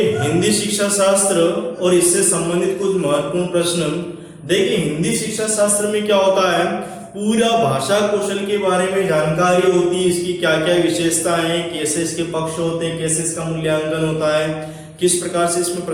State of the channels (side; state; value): both; identical; correlation 1.00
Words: हिंदी शिक्षा शास्त्र और इससे संबंधित कुछ महत्वपूर्ण प्रश्न। देखिए, हिंदी शिक्षा शास्त्र में क्या होता है, पूरा भाषा कौशल के बारे में जानकारी होती है। इसकी क्या क्या विशेषताएं हैं, कैसे इसके पक्ष होते हैं, कैसे इसका मूल्यांकन होता है, किस प्रकार से इसमें